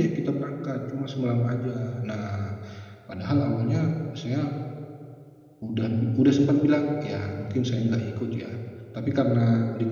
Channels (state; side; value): identical; both; correlation 1.00